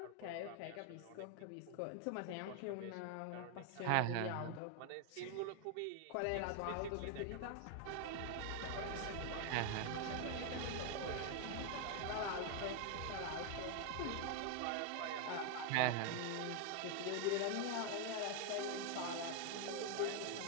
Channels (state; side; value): different; both; correlation 0.01